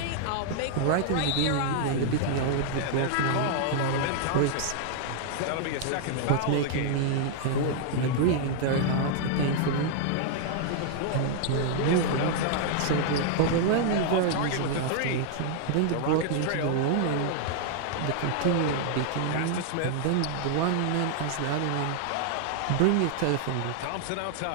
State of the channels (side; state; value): both; different; correlation 0.00